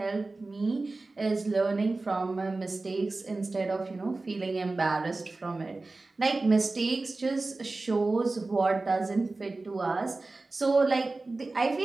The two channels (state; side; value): quieter; left; 3.4 dB